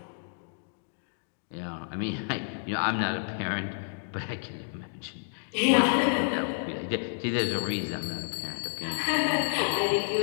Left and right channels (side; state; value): right; silent; digital silence